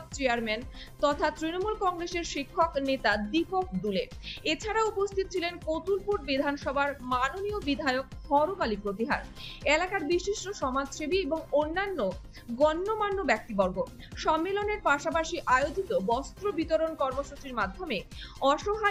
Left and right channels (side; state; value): both; identical; correlation 1.00